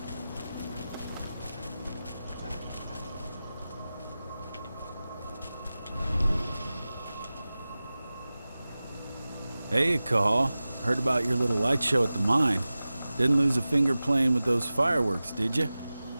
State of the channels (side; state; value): both; inverted; correlation -0.96